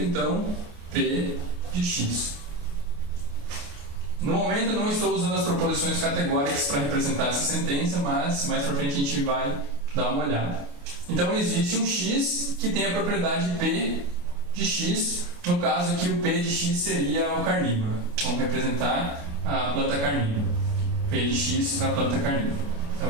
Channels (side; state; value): left; late; 29 ms